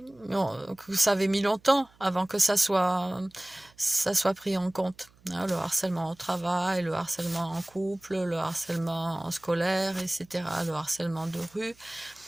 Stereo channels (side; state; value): right; noise; hum, 30 dB below the sound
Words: ça avait mis longtemps avant que ça soit pris en compte, hein, le harcèlement au travail, le harcèlement en couple, le harcèlement scolaire, etc., le harcèlement de rue.